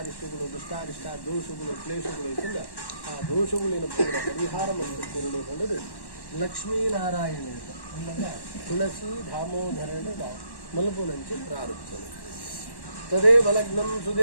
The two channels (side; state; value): right; late; 1.1 ms